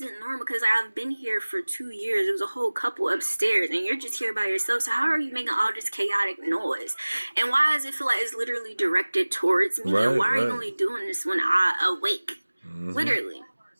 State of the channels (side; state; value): both; inverted; correlation -1.00